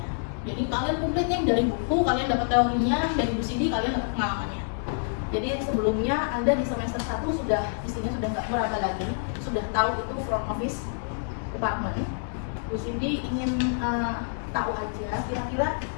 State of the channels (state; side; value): silent; right; digital silence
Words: jadi kalian komplitnya dari buku, kalian dapat teorinya, dari Bu Sidi kalian dapat pengalamannya. Jadi sebelumnya Anda di semester 1 sudah isinya sudah nggak meraba lagi, sudah tahu itu front office department. Bu Cindy ingin tahu aja, kira-kira